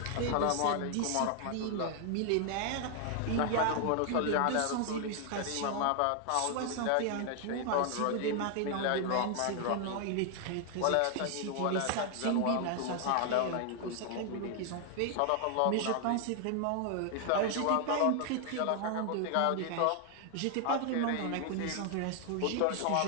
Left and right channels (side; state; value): both; different; correlation 0.00